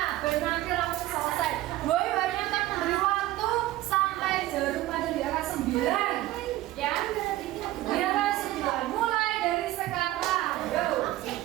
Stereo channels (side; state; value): left; quieter; 16.0 dB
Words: Biar nanti langsung selesai. Boy banyak kan memberi waktu sampai jarum pada di angka 9. Ya, di angka 9. Mulai dari sekarang. Go.